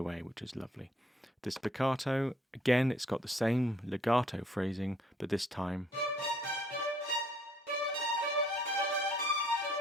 which is lovely. The spiccato, again, it's got the same legato phrasing, but this time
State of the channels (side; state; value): both; normal; correlation 0.64